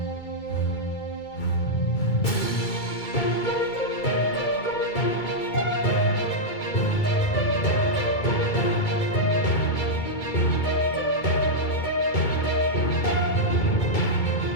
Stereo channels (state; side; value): late; right; 2.3 ms